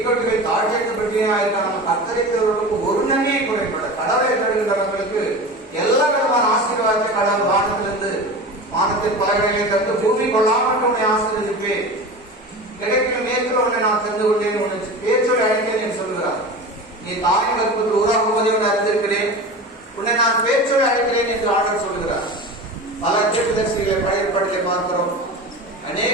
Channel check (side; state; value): both; normal; correlation 0.31